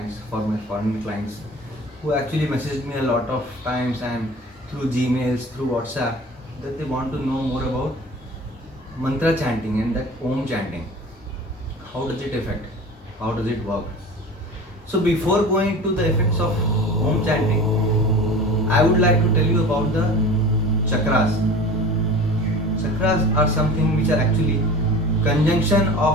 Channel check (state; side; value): normal; both; correlation 0.38